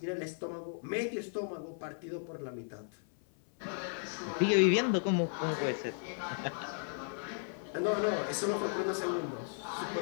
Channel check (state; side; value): silent; right; 54 dB below the other